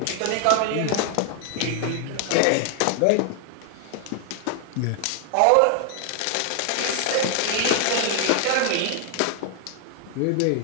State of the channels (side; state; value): both; different; correlation 0.00